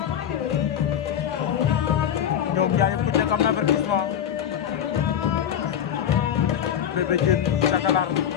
ñoom ñaar yëpp ku nekk am na avertissement Bébé Diène Cakalar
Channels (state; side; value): quieter; right; 9.5 dB